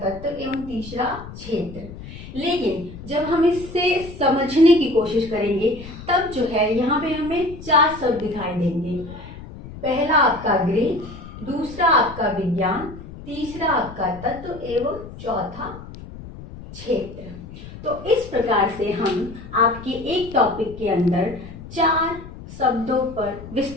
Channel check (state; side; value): noise; left; rumble, 14 dB below the sound